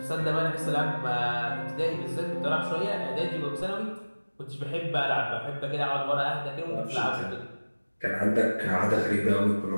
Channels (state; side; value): inverted; both; correlation -1.00